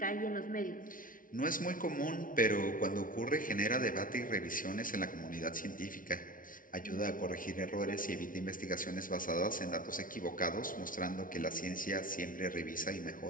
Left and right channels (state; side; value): late; right; 0.39 ms